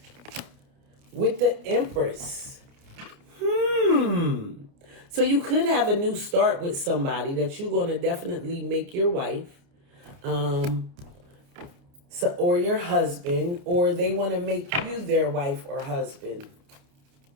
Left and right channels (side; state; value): left; late; 29 ms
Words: with the Empress. So you could have a new start with somebody that you're going to definitely make your wife, or your husband, or they want to make you their wife or husband.